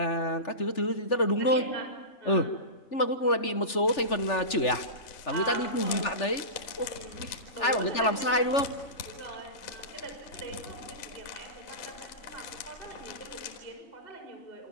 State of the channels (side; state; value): right; late; 3.4 ms